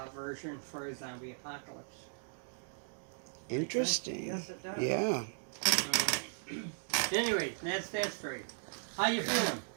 version for a zombie apocalypse. Interesting. Yes, it does. Yeah. Anyway, that's that story. How you feeling?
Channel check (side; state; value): left; silent; digital silence